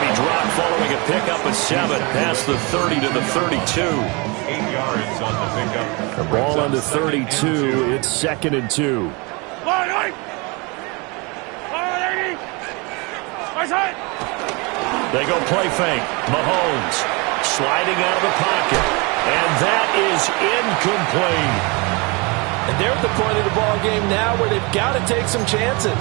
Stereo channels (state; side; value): quieter; left; 28.5 dB